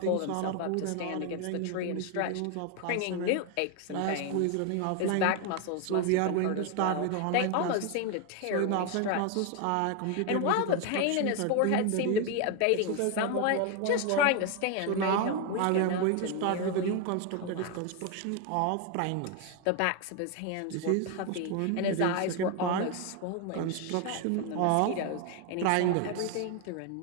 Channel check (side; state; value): both; different; correlation 0.01